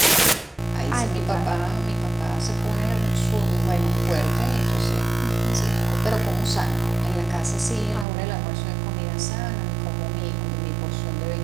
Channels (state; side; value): drops out; left; at 8.1 s